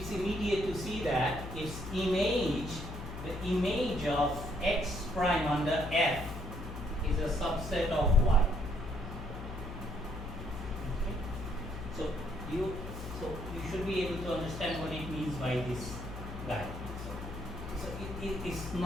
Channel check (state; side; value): noise; left; hum, 9 dB below the sound